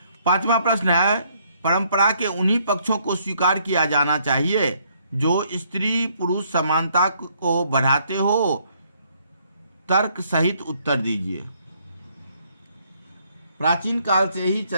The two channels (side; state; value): both; inverted; correlation -0.68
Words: 5वां प्रश्न है, परंपरा के उन्हीं पक्षों को स्वीकार किया जाना चाहिए जो स्त्री पुरुष समानता को बढ़ाते हो। तर्क सहित उत्तर दीजिए। प्राचीन काल से ही